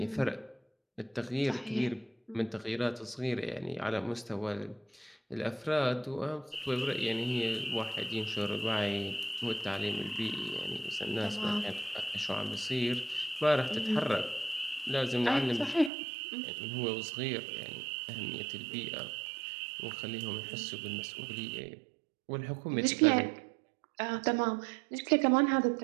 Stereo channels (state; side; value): drops out; left; at 15.9 s